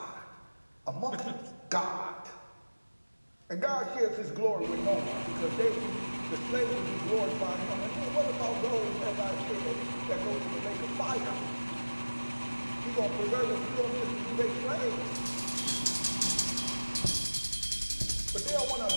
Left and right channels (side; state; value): both; inverted; correlation -1.00